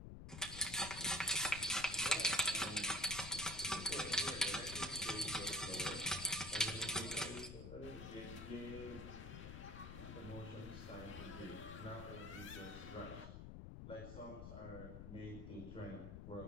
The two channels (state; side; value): noise; left; rumble, 9 dB below the sound